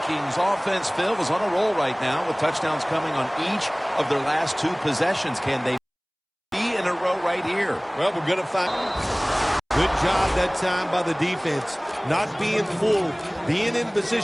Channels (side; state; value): both; identical; correlation 1.00